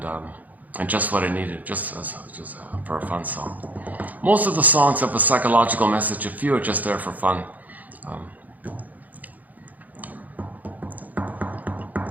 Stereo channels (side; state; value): left; late; 0.079 ms